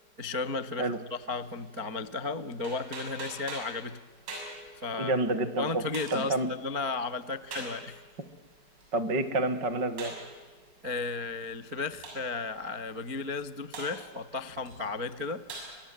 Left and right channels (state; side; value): late; left; 4.5 ms